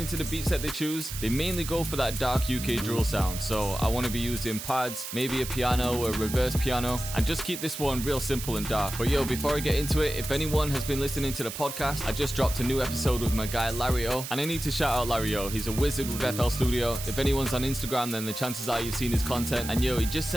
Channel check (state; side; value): noise; right; hiss, 8 dB below the sound